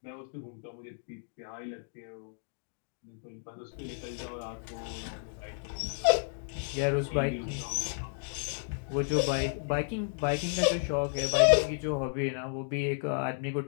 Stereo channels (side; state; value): right; silent; digital silence